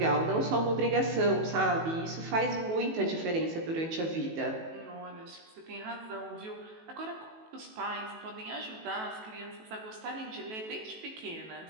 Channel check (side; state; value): left; late; 18 ms